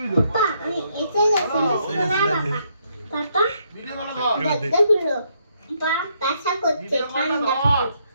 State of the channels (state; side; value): inverted; both; correlation -0.74